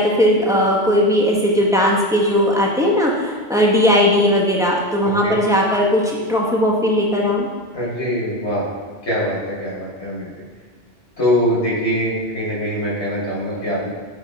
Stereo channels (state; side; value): normal; both; correlation 0.22